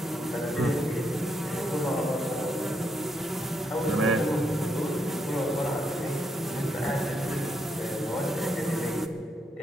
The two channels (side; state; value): both; normal; correlation 0.78